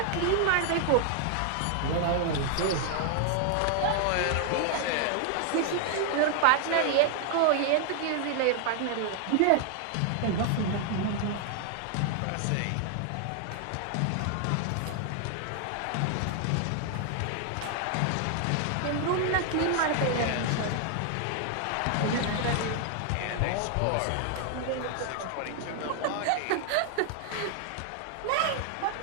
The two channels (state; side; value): different; both; correlation 0.00